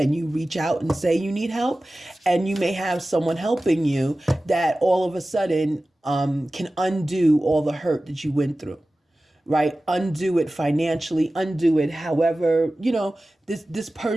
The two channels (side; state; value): both; normal; correlation 0.96